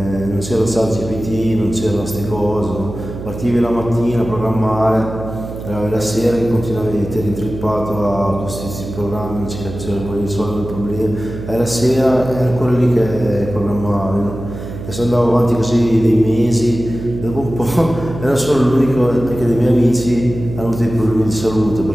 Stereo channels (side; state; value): right; noise; hum, 10 dB below the sound